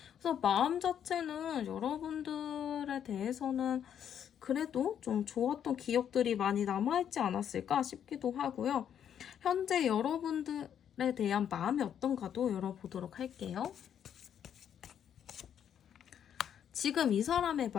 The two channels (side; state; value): right; quieter; 9.1 dB